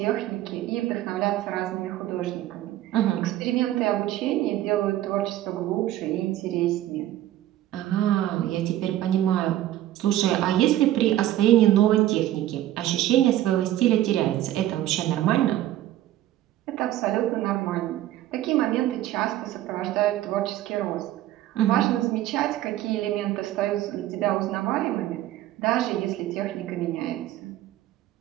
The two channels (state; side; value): quieter; left; 13.7 dB